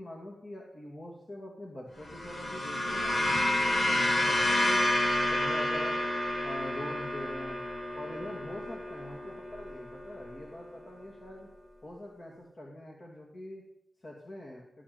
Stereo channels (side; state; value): both; normal; correlation 0.92